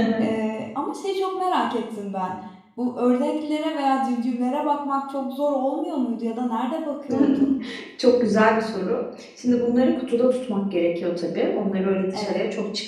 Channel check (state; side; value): identical; both; correlation 1.00